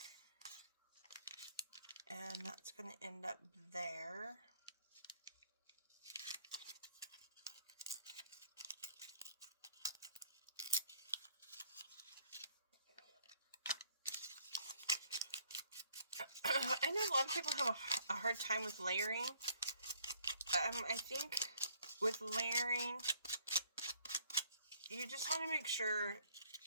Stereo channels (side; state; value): both; inverted; correlation -0.64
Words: And that's going to end up there. I know a lot of people have a hard time with layering. I think with layering, you just want to make sure